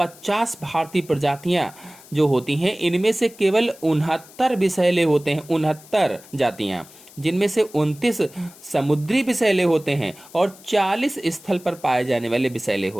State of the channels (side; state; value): left; noise; hiss, 22 dB below the sound